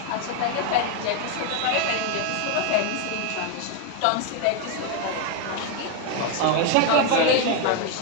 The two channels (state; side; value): different; both; correlation 0.01